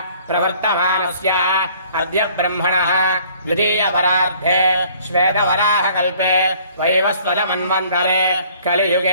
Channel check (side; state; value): both; inverted; correlation -0.57